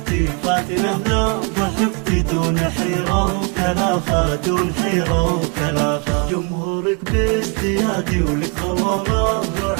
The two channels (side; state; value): left; quieter; 34.5 dB